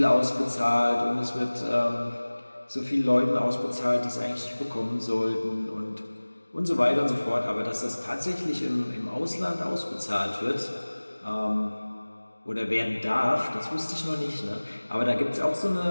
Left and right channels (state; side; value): inverted; both; correlation -1.00